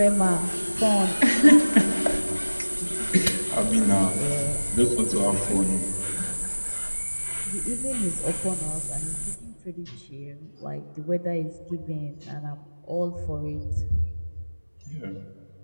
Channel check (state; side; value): inverted; both; correlation -1.00